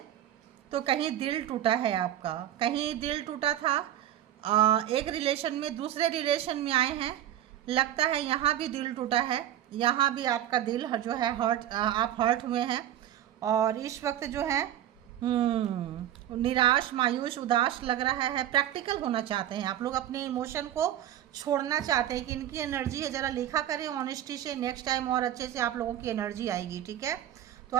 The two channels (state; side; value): quieter; left; 11.8 dB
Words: तो कहीं दिल टूटा है आपका, कहीं दिल टूटा था। एक रिलेशन में दूसरे रिलेशन में आए हैं, लगता है यहाँ भी दिल टूटा है, यहाँ भी आपका दिल जो है हर्ट, आप हर्ट हुए हैं। और इस वक्त जो है निराश, मायूस, उदास लग रहा है। प्रैक्टिकल होना चाहते हैं आप लोग, अपने इमोशन को छोड़ना चाहते हैं कि इनकी एनर्जी है, ज़रा लिखा करें ऑनेस्टी से, नेक्स्ट टाइम और अच्छे से आप लोगों की एनर्जी आएगी, ठीक है। तो